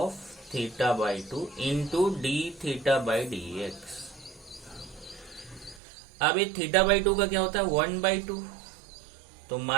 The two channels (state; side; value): drops out; left; at 5.8 s